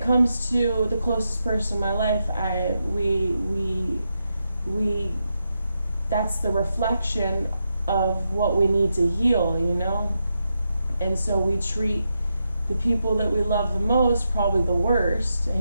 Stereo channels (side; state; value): both; inverted; correlation -0.85